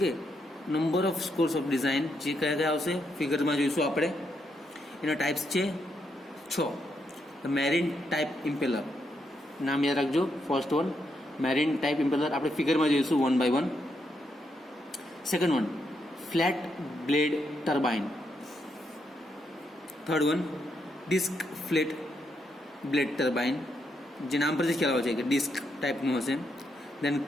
number of scores of design જે કયા કયા આવશે ફિગરમાં જોઈશું આપણે. એના ટાઈપ્સ છે 6. મેરીન ટાઈપ ઇમ્પેલર, નામ યાદ રાખજો. First one marine type impeller આપણે ફિગરમાં જોઈશું 1 by 1. Second one flat blade turbine. Third one disc flat blade turbine, જે નામ પરથી ખ્યાલ આવે છે કે ડિસ્ક ટાઈપનું હશે. દેન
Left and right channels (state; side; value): normal; both; correlation 0.79